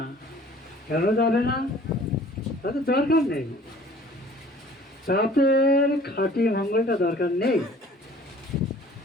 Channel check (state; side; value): normal; both; correlation 0.51